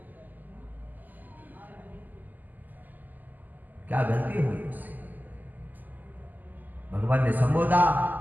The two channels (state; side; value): late; left; 0.085 ms